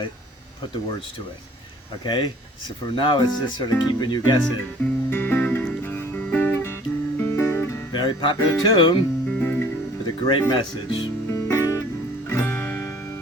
put the words to it. Okay? So for now, it's just sort of keeping you guessing. Very popular tune with a great message.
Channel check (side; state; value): both; normal; correlation 0.53